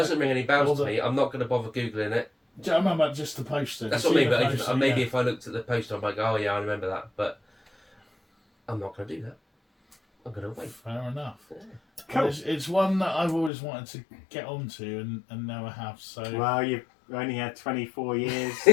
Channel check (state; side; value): drops out; right; at 13.5 s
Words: ring any bells to me. I'm not going to bother googling it. I remember just the poster. That's what I mean. But maybe if I looked at the poster, I'm like, oh yeah, I remember that. But I'm not going to do that. I'm going to wait. Fair enough. Yeah. Cool. It's one that I've always wanted to get onto and never have. So well, you've only had 24 years.